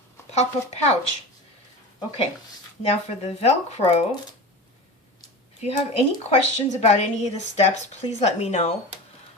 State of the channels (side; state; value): both; normal; correlation 0.30